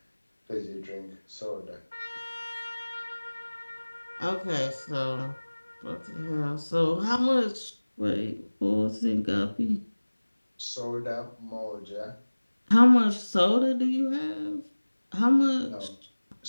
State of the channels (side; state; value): both; inverted; correlation -1.00